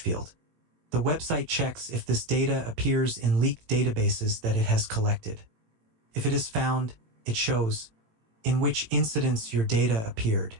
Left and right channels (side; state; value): left; late; 18 ms